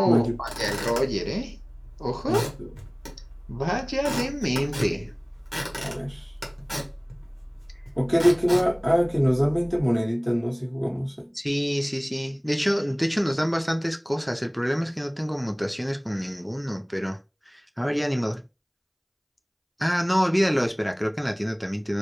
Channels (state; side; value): identical; both; correlation 1.00